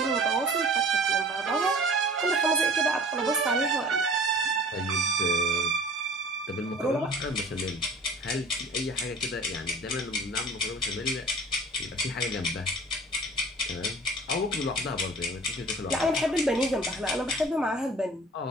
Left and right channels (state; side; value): normal; both; correlation 0.45